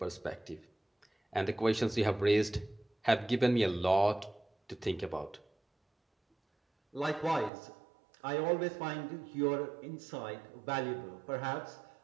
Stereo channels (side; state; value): left; drops out; at 7.5 s